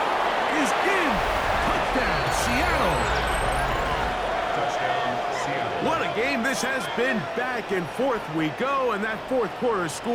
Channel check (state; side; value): identical; both; correlation 1.00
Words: is in. Touchdown, Seattle. Touchdown, Seattle. What a game this has been. Back and forth we go, and that 4th quarter